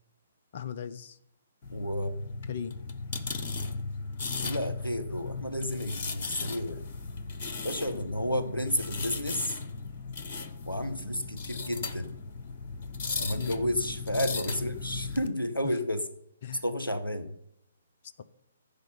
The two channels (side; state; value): both; inverted; correlation -0.75